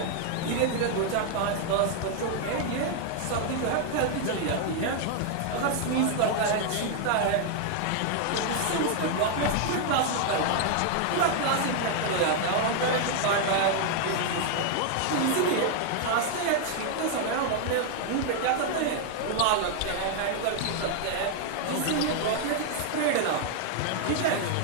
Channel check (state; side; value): different; both; correlation 0.00